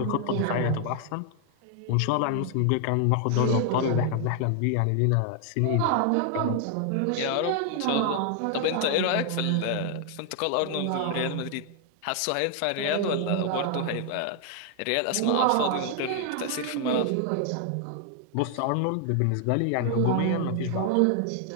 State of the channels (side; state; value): both; different; correlation 0.00